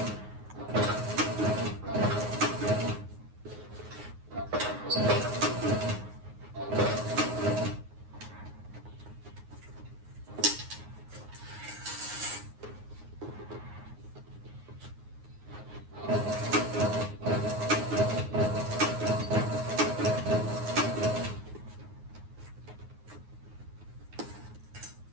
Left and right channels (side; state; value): left; late; 9.5 ms